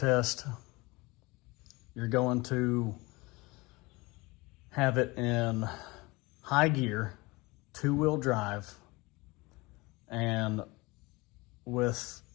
you're going to have it in high gear, 2-wheel drive, and with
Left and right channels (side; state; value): right; quieter; 23.5 dB